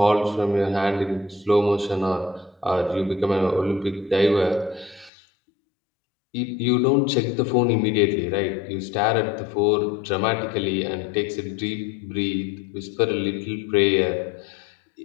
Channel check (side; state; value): right; drops out; at 5.1 s